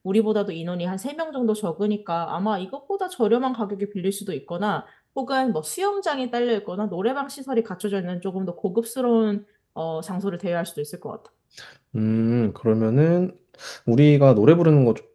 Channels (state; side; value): identical; both; correlation 1.00